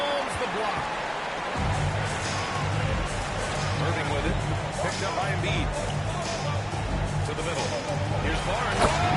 the block. Irving with it. Picked up by Embiid. To the middle. Here's Barnes.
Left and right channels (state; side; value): identical; both; correlation 1.00